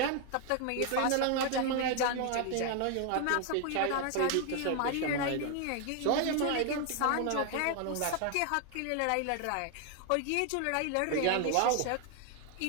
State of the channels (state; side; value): different; both; correlation 0.01